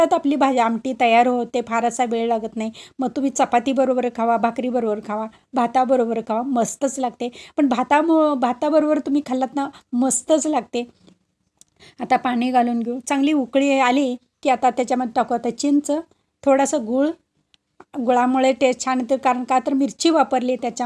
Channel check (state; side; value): identical; both; correlation 1.00